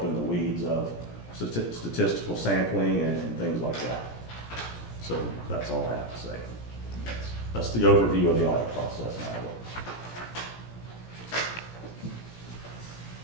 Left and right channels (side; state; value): right; late; 17 ms